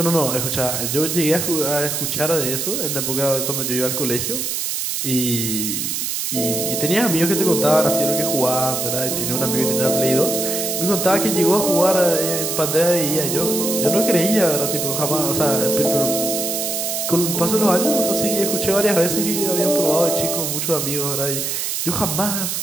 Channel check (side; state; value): right; noise; hiss, 2 dB below the sound